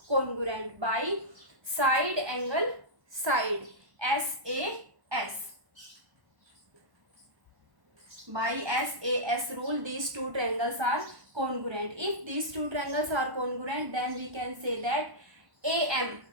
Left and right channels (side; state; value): left; late; 1.1 ms